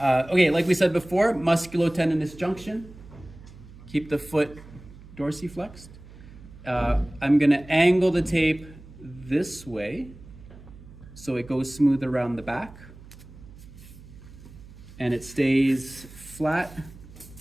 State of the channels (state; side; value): noise; right; hum, 19 dB below the sound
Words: Okay, like we said before, musculotendinous junction. Keep the foot dorsiflexed. I'm gonna angle the tape this way so it goes smooth around the back and it stays flat